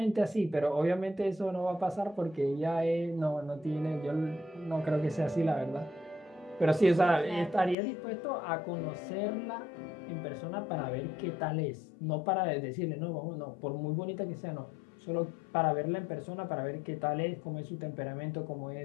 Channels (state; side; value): drops out; right; at 7.8 s